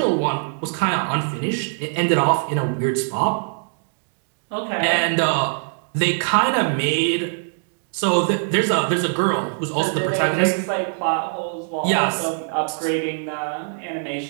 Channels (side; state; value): left; silent; digital silence